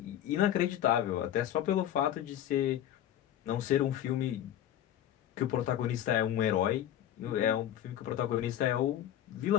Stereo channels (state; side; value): quieter; right; 11.4 dB